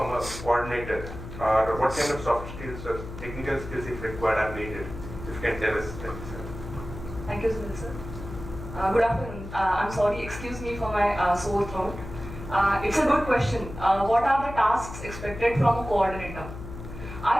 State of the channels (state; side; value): noise; left; hum, 11 dB below the sound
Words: a coordinator, or what kind of soft skills or technical skills if required are needed? If you can tell us that, sir. Thank you, Sunil sir. Good afternoon. I'm sorry, excuse me for my sore throat. It's a good question. What are the tasks expected from a coordinator?